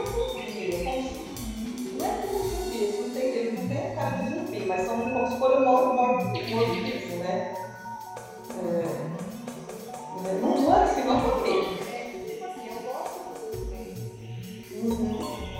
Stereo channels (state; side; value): identical; both; correlation 1.00